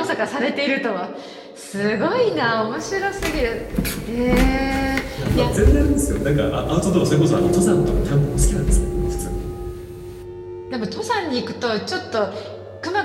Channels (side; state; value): both; identical; correlation 1.00